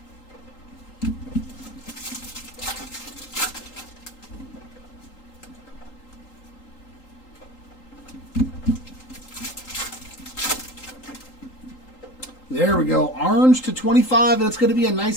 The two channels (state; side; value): late; right; 3.8 ms